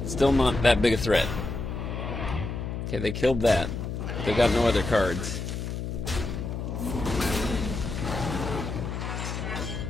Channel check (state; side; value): noise; left; hum, 5 dB below the sound